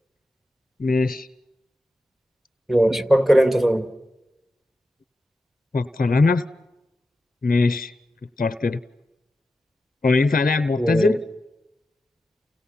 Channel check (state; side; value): normal; both; correlation 0.90